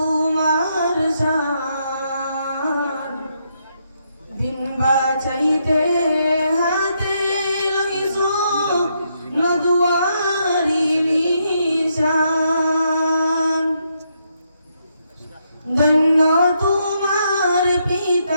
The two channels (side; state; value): both; inverted; correlation -0.78